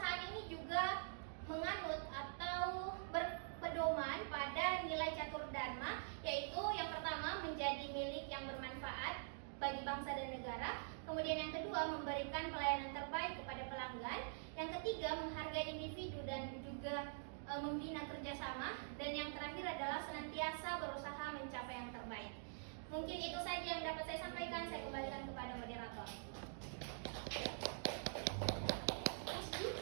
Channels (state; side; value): silent; left; digital silence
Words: ini juga menganut atau berpedoman pada nilai catur dharma, yaitu yang pertama menjadi milik yang bermanfaat bagi bangsa dan negara, kemudian yang kedua memberikan pelayanan terbaik kepada pelanggan, yang ketiga menghargai individu dan juga membina kerjasama, dan yang terakhir adalah senantiasa berusaha mencapai yang terbaik. Mungkin itu saja yang dapat saya sampaikan. Saya kembalikan kepada moderator.